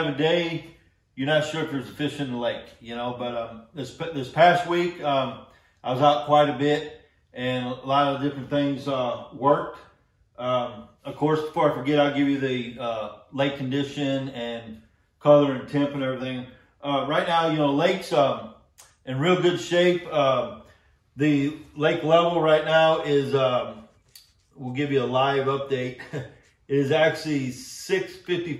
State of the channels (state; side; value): identical; both; correlation 1.00